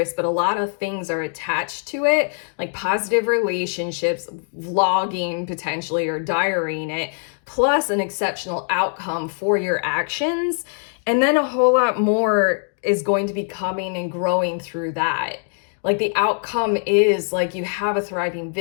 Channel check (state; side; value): silent; right; 57 dB below the other